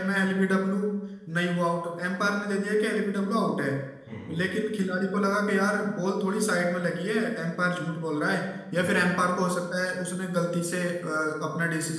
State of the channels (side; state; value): both; identical; correlation 1.00